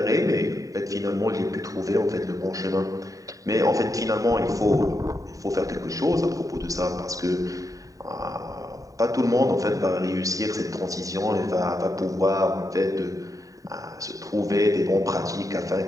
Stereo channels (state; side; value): late; left; 0.16 ms